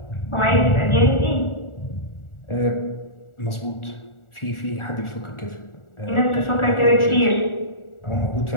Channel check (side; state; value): right; late; 1.4 ms